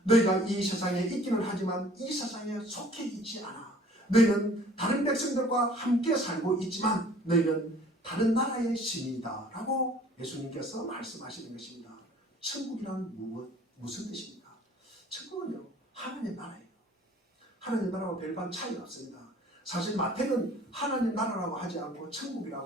너희가 이 세상에 있기는 하지만 이 세상에 속해 있지 않아. 너희는 다른 백성들과 함께 살고 있지만 너희는 다른 나라의 신이다 라고 예수님께서 말씀하시는 것입니다. 천국이란 무슨 뜻입니까? 천국은요, 하나님의 나라예요. 하나님의 나라와 별반 차이가 없습니다. 사실 마태는 하나님 나라라고 하지 않고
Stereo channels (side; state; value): both; normal; correlation 0.52